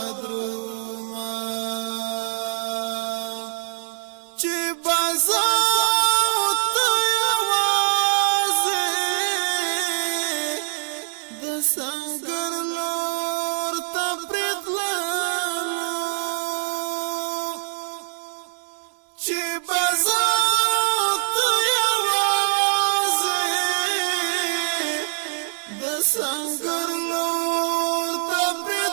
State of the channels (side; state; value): left; silent; digital silence